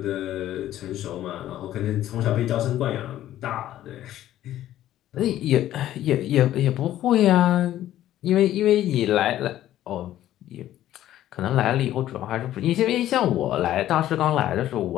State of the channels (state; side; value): quieter; right; 13.0 dB